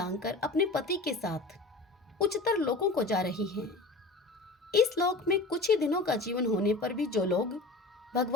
अपने पति के साथ उच्चतर लोकों को जा रही है। इस लोक में कुछ ही दिनों का जीवन होने पर भी जो लोग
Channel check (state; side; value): quieter; right; 3.2 dB